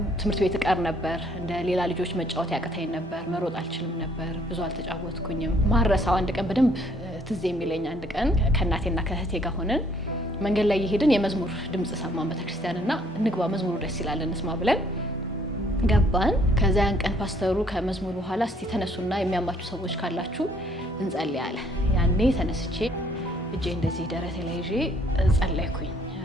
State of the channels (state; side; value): normal; both; correlation 0.63